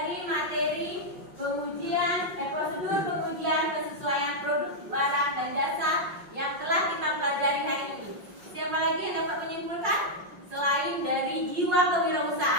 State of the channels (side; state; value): left; late; 5.6 ms